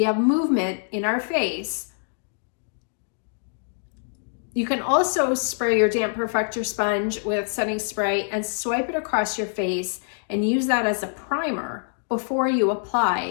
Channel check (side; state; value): right; silent; digital silence